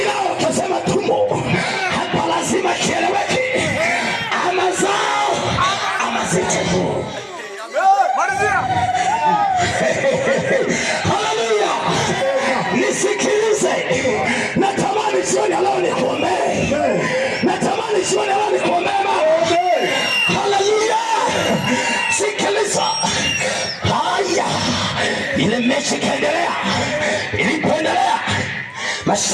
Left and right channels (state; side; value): identical; both; correlation 1.00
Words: nao wakasema tumo. Hapa lazima kieleweke, ama zao ama zetu. Haleluya. Nisikilize, natamani jioni leo nikuombee, natamani jioni leo nikuombee. Haleluya. Sikiliza. Haya, ile mechi kaendelea. Ilipoendelea,